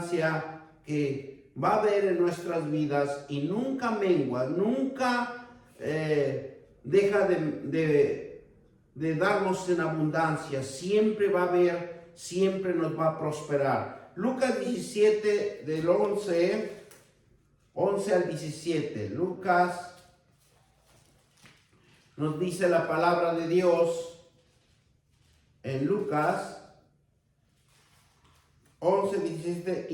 que va a haber en nuestras vidas y nunca mengua, nunca deja de darnos en abundancia, siempre va a haber, siempre nos va a prosperar. Lucas 17 del 11 al 17. Lucas nos dice la palabra de Dios en Lucas 11, 17,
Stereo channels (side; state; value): both; identical; correlation 1.00